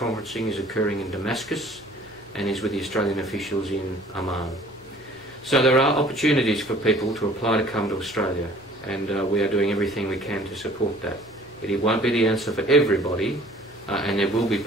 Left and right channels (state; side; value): noise; left; hum, 26 dB below the sound